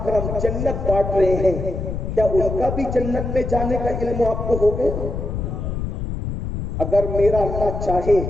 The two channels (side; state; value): left; noise; rumble, 4 dB below the sound